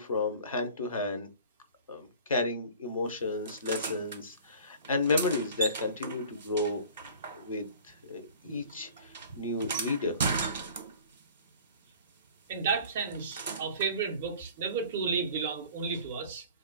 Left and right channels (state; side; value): inverted; both; correlation -0.45